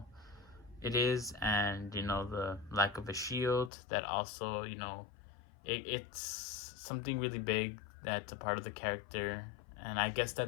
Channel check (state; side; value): drops out; right; at 3.7 s